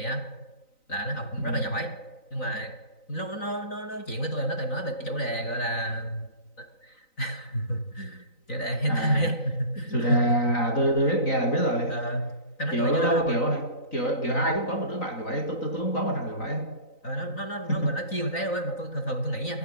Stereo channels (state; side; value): late; right; 3.9 ms